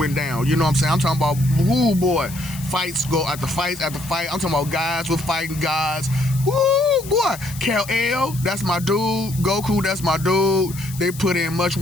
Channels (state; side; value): noise; left; hiss, 15 dB below the sound